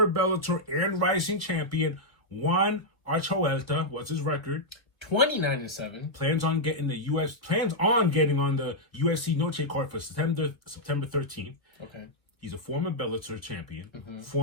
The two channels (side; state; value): right; late; 1.4 ms